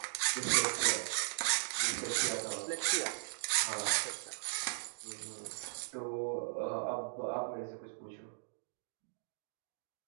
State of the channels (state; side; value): silent; left; digital silence